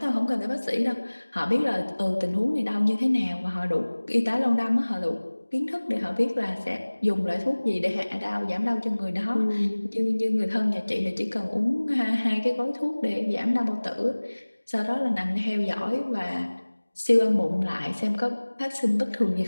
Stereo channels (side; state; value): both; inverted; correlation -1.00